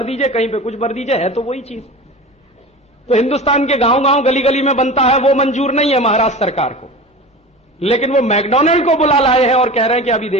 दीजिए, कहीं पे कुछ भर दीजिए, है तो वही चीज। तो हिंदुस्तान के गांव गांव गली गली में बनता है, वो मंजूर नहीं है महाराष्ट्र सरकार को, लेकिन वो मैकडोनल्ड को बुला लाए हैं और कह रहे हैं कि अभी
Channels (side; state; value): both; normal; correlation 0.33